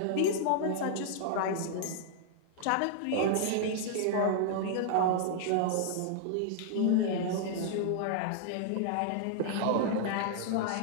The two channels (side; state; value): both; different; correlation -0.01